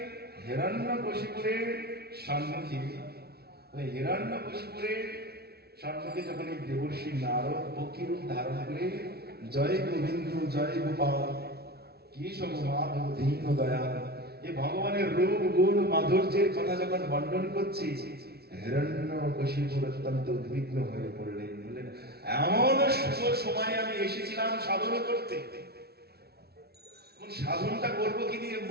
হিরণ্যকশিপুরের সম্মুখে, হিরণ্যকশিপুরের সম্মুখে যখন এই দেবর্ষি নারদ পক্ষীরূপ ধারণ করে জয় গোবিন্দ জয় গোপাল কেশব মাধব দীন দয়াল এই ভগবানের রূপ গুণ মাধুর্যের কথা যখন বর্ণন করছি, হিরণ্যকশিপুর অত্যন্ত উদ্বিগ্ন হয়ে পড়লেন। বললেন, এমন শুভ সময়ে আমি এসেছিলাম সাধন করতে, সাধনটা করবো কি দিয়ে?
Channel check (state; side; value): late; left; 0.46 ms